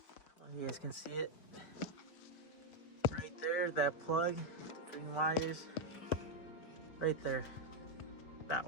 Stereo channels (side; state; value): right; late; 5.2 ms